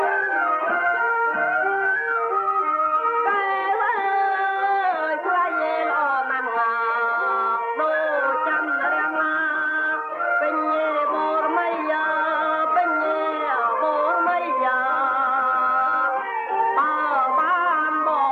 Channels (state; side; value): identical; both; correlation 1.00